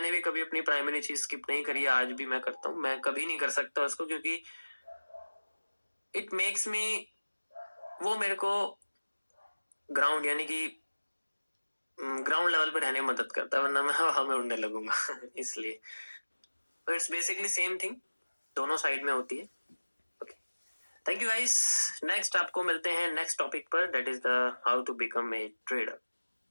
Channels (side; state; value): both; inverted; correlation -1.00